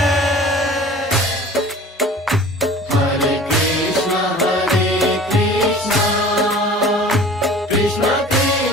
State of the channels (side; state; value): both; normal; correlation 0.44